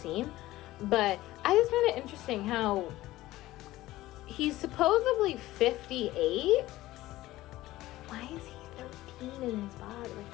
But I just find it interesting how he's supposedly 58. Why is he 13 in his body? Like,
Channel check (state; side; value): quieter; right; 16.6 dB